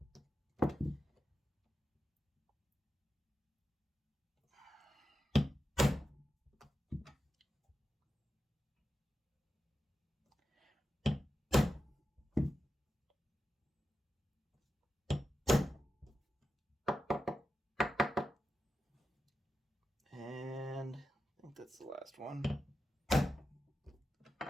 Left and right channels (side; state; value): both; normal; correlation 0.90